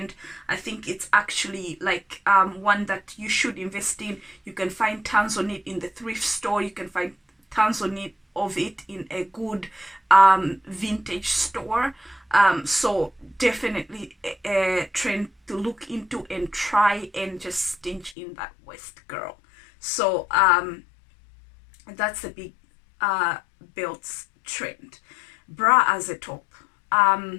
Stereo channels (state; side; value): drops out; right; at 18.2 s